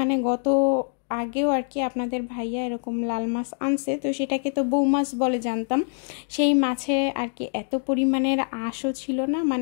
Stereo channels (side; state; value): right; silent; digital silence